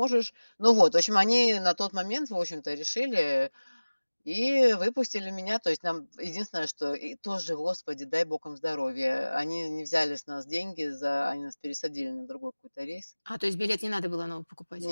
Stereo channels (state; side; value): inverted; both; correlation -1.00